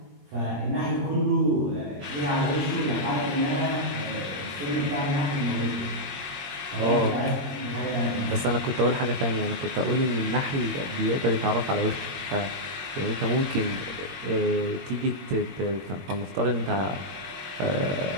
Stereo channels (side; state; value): left; late; 21 ms